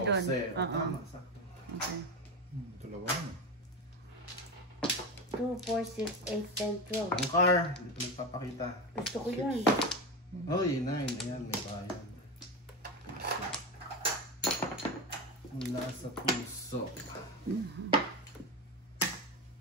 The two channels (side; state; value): both; normal; correlation 0.19